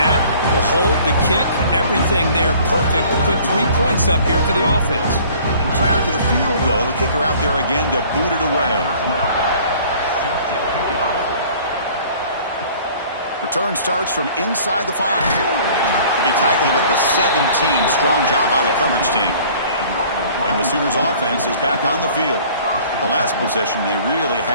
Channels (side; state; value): both; inverted; correlation -0.51